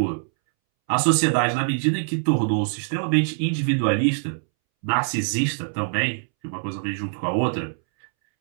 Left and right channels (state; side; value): silent; left; 63 dB below the other